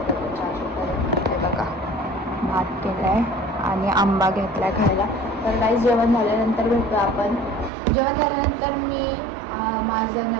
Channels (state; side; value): drops out; left; at 7.7 s